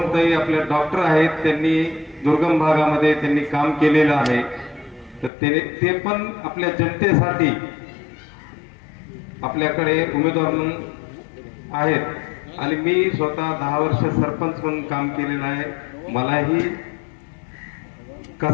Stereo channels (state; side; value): drops out; right; at 5.3 s